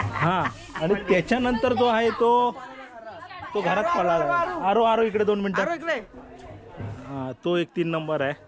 हा आणि त्याच्यानंतर जो आहे तो घरात पळाला. आरो इकडे 2 मिनिटं. हा तो एक 3 नंबर आहे.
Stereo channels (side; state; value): both; identical; correlation 1.00